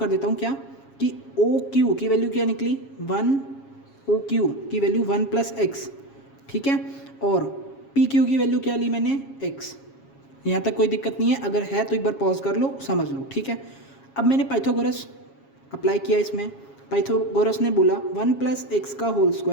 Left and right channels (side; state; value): right; late; 7.3 ms